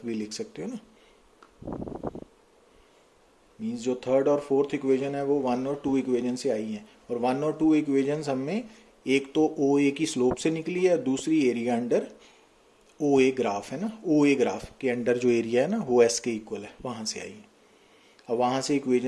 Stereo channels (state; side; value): identical; both; correlation 1.00